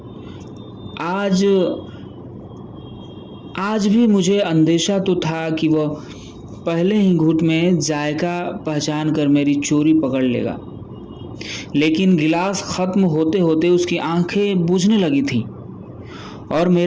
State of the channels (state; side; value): identical; both; correlation 1.00